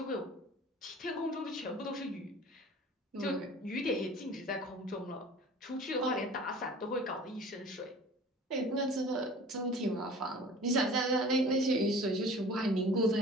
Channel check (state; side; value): normal; both; correlation 0.44